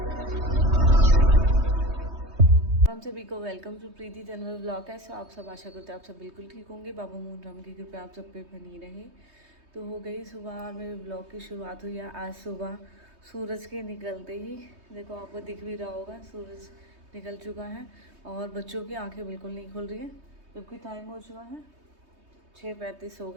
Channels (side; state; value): left; late; 3.2 ms